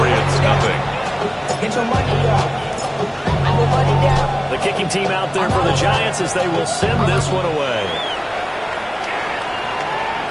nothing. Get your money up. Your money down. The kicking team out there for the Giants as they will send this one away.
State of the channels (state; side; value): identical; both; correlation 1.00